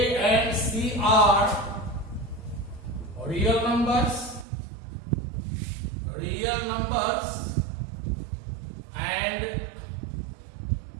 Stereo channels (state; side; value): drops out; left; at 4.5 s